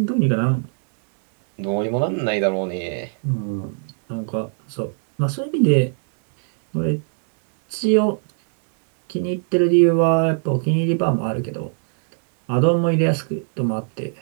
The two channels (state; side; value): silent; left; 64 dB below the other